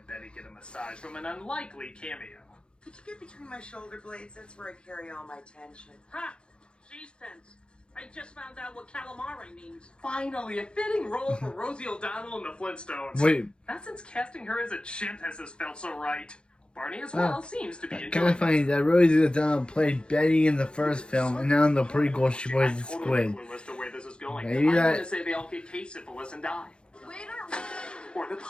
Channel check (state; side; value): late; right; 0.053 ms